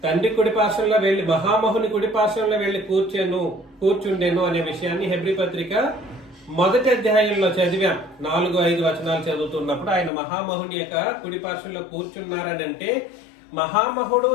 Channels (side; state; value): right; drops out; at 10.1 s